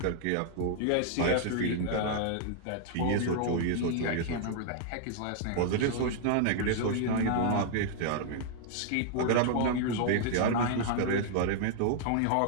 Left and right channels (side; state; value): both; different; correlation 0.00